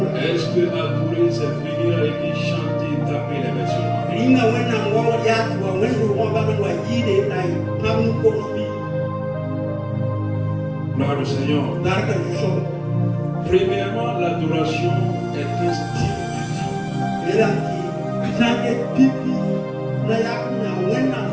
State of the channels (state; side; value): identical; both; correlation 1.00